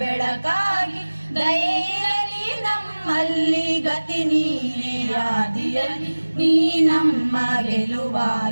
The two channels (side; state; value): both; inverted; correlation -1.00